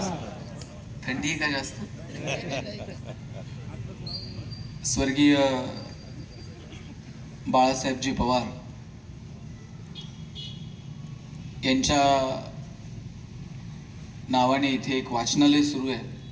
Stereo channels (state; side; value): identical; both; correlation 1.00